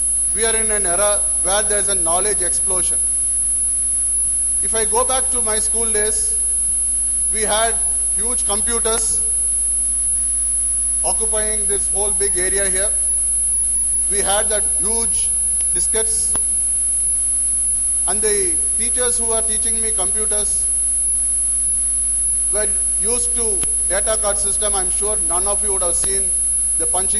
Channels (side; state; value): both; identical; correlation 1.00